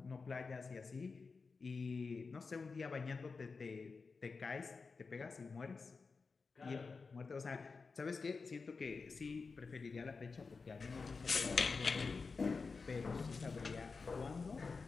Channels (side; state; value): right; quieter; 4.6 dB